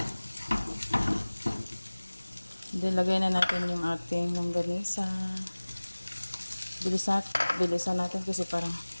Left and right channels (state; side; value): inverted; both; correlation -1.00